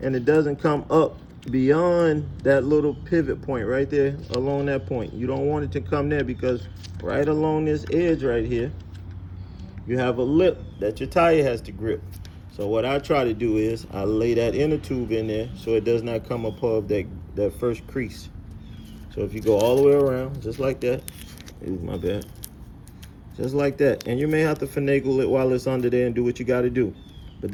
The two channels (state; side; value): identical; both; correlation 1.00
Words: it doesn't come up beyond that little pivot point right there, along that point. You don't want it to come there, because right along this edge right here, you have a lip that your tire has to grip. So what I try to do is I lay that inner tube in there so it does not come above that first crease. So if you go all the way around, just like that, ooh, my bad, just like that. And you may have to finagle it while it's under there and do what you got to do. But